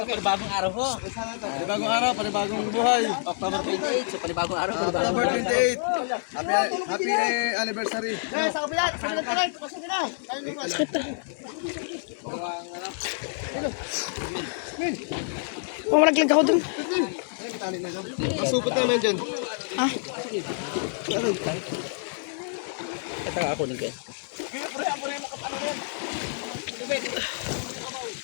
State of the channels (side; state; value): right; silent; 60 dB below the other